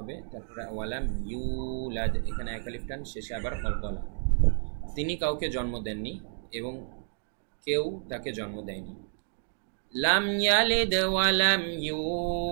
তারপরে ওয়ালাম ইউলাদ এখানে এক আলিফ টান, শেষে আবার কলকলা। তিনি কাউকে জন্ম দেননি এবং কেউ তাকে জন্ম দেয়নি। লাম ইয়ালিদ ওয়া লাম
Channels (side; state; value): left; silent; digital silence